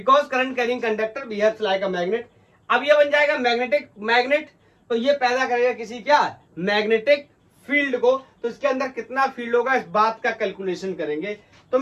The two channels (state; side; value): identical; both; correlation 1.00